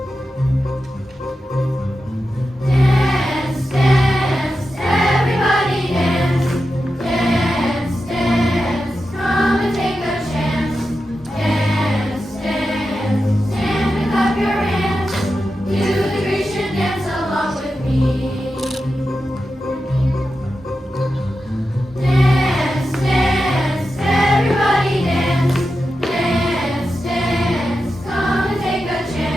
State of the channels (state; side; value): normal; both; correlation 0.90